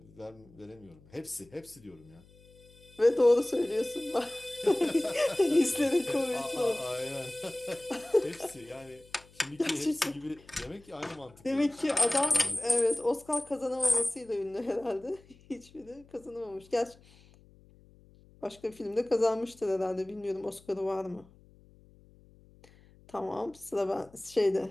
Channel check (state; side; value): noise; left; hum, 26 dB below the sound